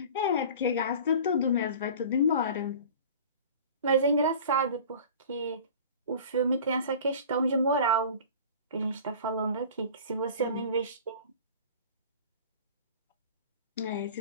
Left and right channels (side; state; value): both; inverted; correlation -0.40